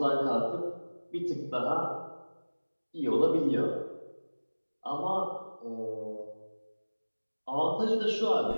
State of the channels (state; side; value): inverted; both; correlation -1.00